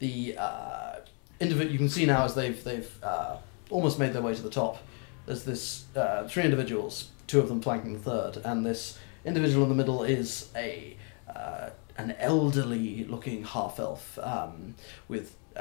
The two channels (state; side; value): quieter; right; 39.1 dB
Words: you can see now as they've almost made their way to the top. There's this three individuals, two of them flanking the third, and this individual in the middle is an elderly-looking half-elf with